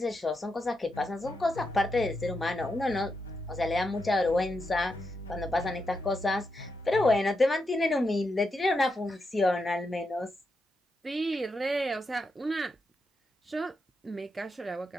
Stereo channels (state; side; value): normal; both; correlation 0.84